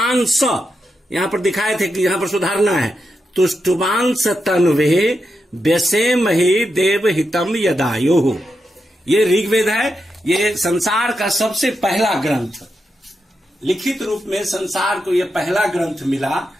यहां पर दिखाए थे कि यहां पर सुधारना है, तुष्टुवांस तन्वे व्यसेमहि देवहितम यदायुः। ये ऋग्वेद है। ये संसार का सबसे पहला ग्रंथ, लिखित रूप में संसार को यह पहला ग्रंथ मिला।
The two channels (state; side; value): normal; both; correlation 0.86